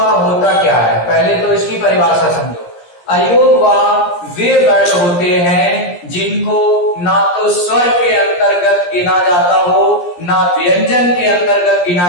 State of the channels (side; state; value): right; late; 17 ms